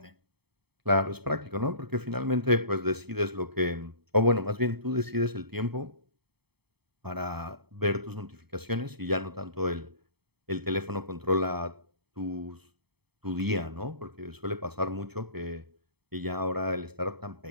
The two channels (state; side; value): late; left; 0.97 ms